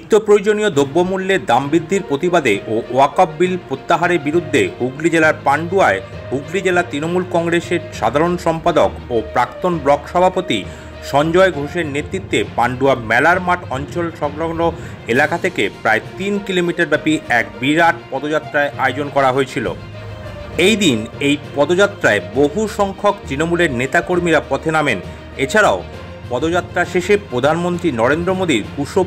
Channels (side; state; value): both; identical; correlation 1.00